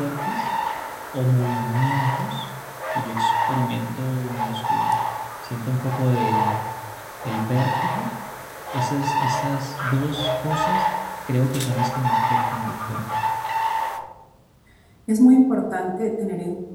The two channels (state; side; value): identical; both; correlation 1.00